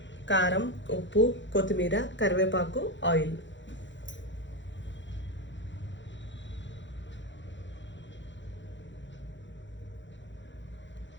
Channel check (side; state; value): right; late; 0.54 ms